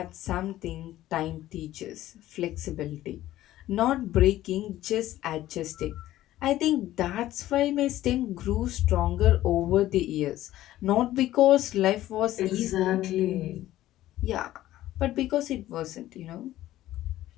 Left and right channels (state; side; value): quieter; right; 14.5 dB